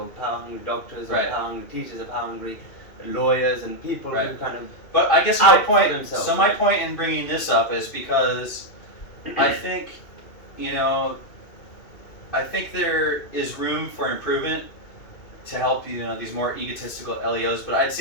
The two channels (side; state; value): right; late; 2.6 ms